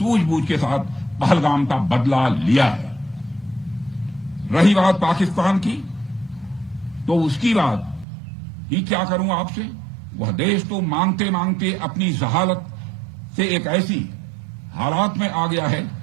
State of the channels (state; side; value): drops out; left; at 8.1 s